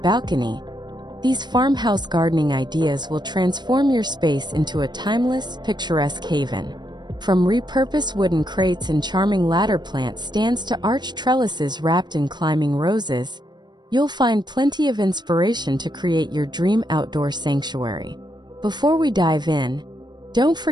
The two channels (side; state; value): left; late; 0.21 ms